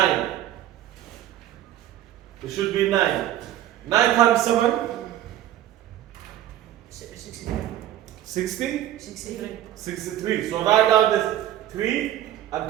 It should be 9. 9 times 7? 63. 60? 63. 63. So write down the 3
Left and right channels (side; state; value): left; quieter; 12.7 dB